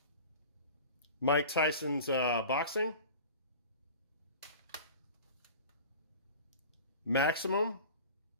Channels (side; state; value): both; inverted; correlation -0.38